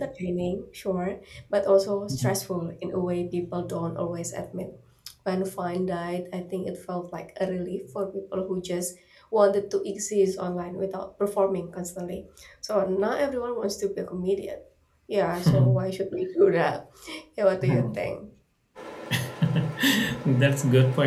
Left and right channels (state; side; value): identical; both; correlation 1.00